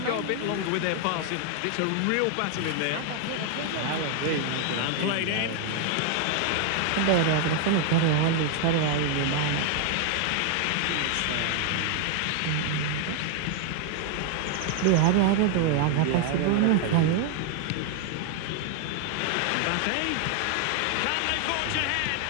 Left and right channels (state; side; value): different; both; correlation 0.00